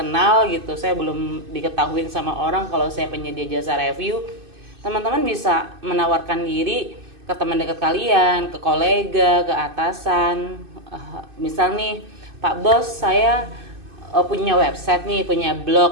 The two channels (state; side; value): late; left; 2.6 ms